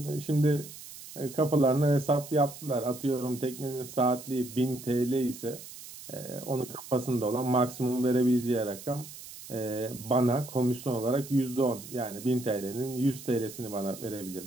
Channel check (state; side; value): noise; right; hiss, 14 dB below the sound